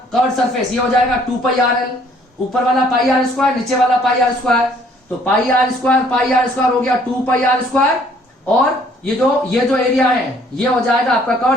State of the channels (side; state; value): both; normal; correlation 0.61